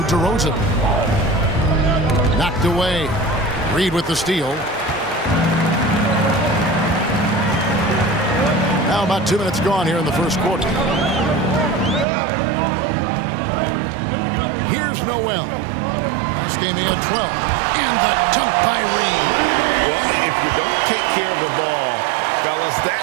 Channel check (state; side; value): drops out; left; at 12.1 s